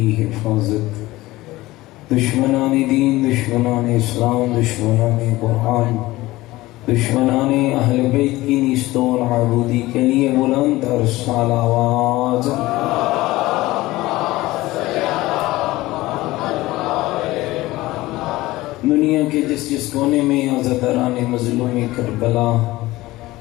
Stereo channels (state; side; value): quieter; right; 18.5 dB